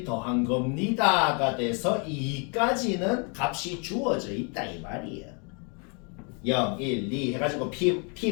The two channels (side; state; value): right; quieter; 36.4 dB